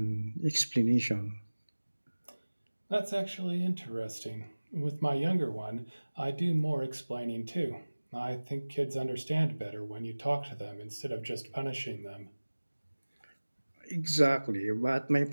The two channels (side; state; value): both; inverted; correlation -1.00